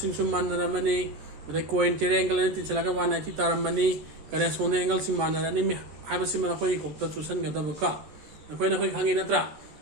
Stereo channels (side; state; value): left; late; 14 ms